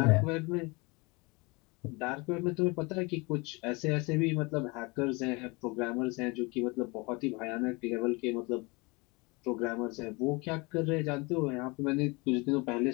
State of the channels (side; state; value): right; quieter; 26.9 dB